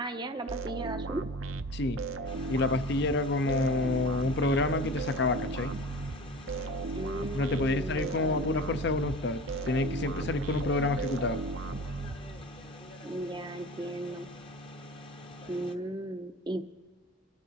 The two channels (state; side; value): normal; both; correlation 0.37